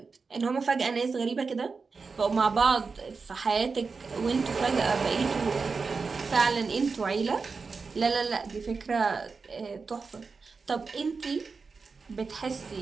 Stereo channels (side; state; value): left; quieter; 4.7 dB